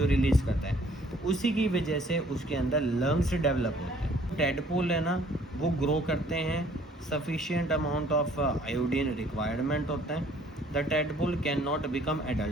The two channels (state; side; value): normal; both; correlation 0.58